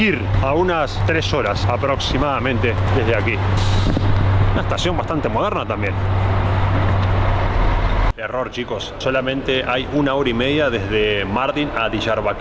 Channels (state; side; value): identical; both; correlation 1.00